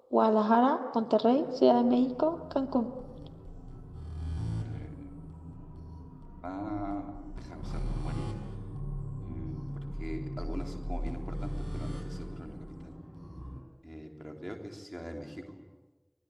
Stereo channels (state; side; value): identical; both; correlation 1.00